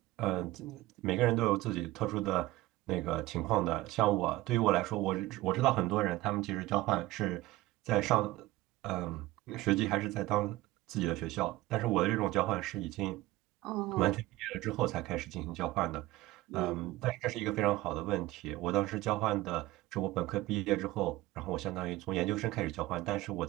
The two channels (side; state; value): left; quieter; 17.9 dB